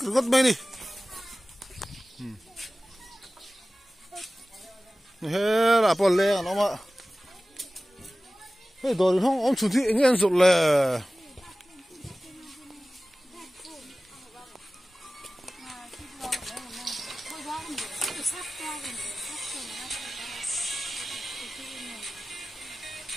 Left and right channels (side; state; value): both; normal; correlation 0.97